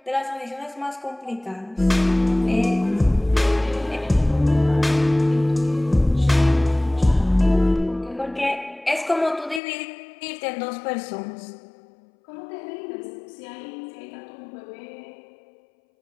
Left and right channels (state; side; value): drops out; right; at 9.6 s